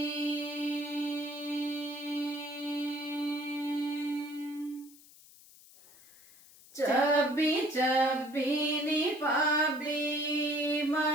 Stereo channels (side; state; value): left; noise; hiss, 23 dB below the sound